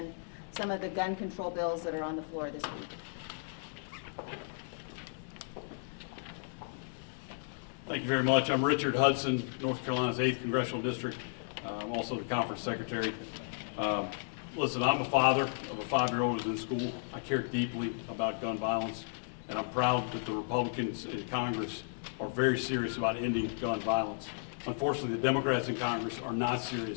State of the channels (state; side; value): silent; right; digital silence